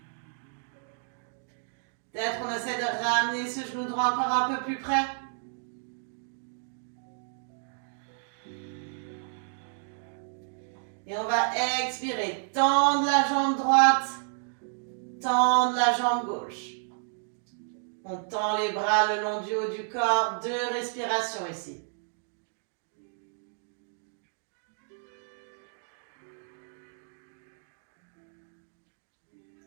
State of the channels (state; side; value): silent; left; digital silence